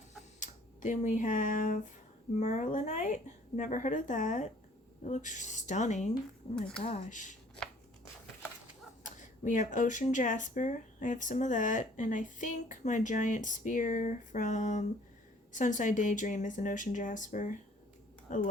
Then we have merlinite. Never heard of that. It looks stunning. Oh my gosh. We have ocean jasper. I have some of that. And I think my giant spear from Sunside Daydream is an ocean jasper. I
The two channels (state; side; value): normal; both; correlation 0.57